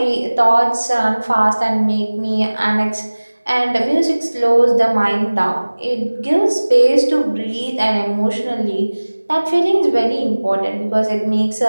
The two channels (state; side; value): inverted; both; correlation -1.00